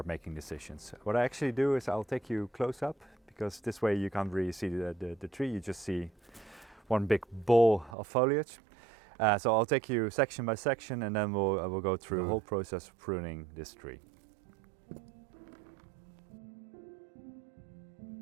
making decisions. What I actually do is I'll take you close up, because this way you can't really see the tree, you just see one big ball of foliage. So I'll take you section by section, and then we'll go through the whole process of pruning this tree.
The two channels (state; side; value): drops out; left; at 8.0 s